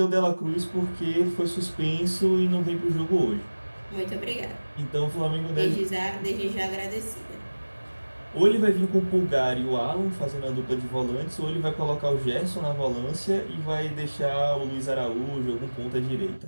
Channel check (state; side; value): inverted; both; correlation -1.00